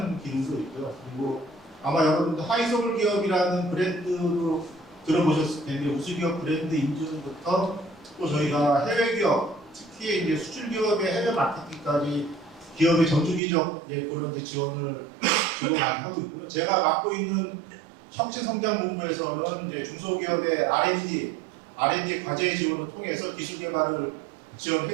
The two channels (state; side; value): drops out; left; at 13.4 s